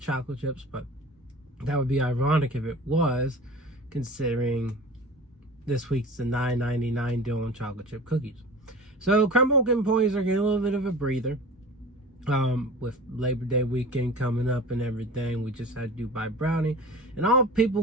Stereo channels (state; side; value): normal; both; correlation 0.38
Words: chips, but that would be ironic if it was, considering this week's the $9.99 deal on chocolate chip cookies. So Crumbl employees are getting a little bit of a breather. With Labor Day weekend coming up and everything, we just had Dubai brownie, and all